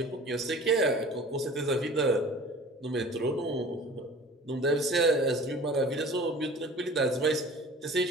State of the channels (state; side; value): normal; both; correlation 0.44